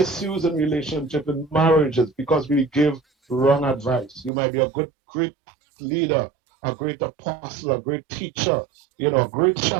in relationship and marriages because we give wrong advice. You might be a great leader, a great apostle, a great teacher, a great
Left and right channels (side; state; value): left; drops out; at 4.3 s